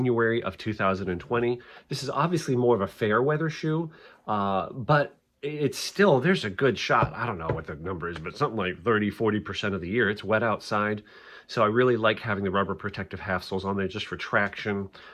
of 2020. This is obviously more of a fair weather shoe, but it's still, there's a good shot. I don't know what the number is, but something like 30–40% of the year, it's wet outside. So I really like having the rubber protective half soles on there just for traction.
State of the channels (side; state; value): both; identical; correlation 1.00